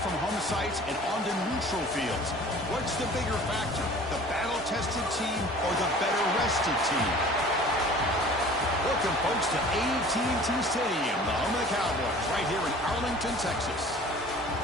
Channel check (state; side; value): normal; both; correlation 0.46